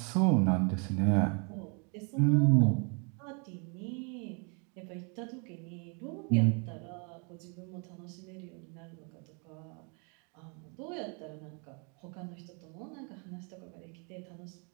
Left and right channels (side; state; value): left; quieter; 36.0 dB